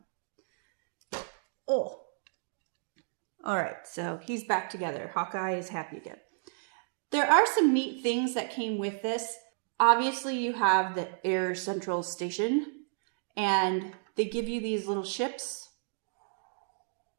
Oh. All right, so he's back together. Hawkeye is happy again. There are some neat things that came with this. Obviously, you have the Air Central Station, and they give you these little ships.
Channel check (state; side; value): silent; left; digital silence